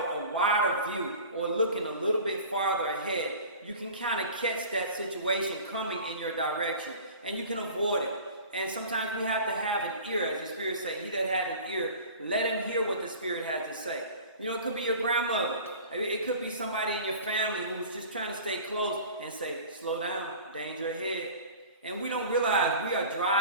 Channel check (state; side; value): inverted; both; correlation -0.40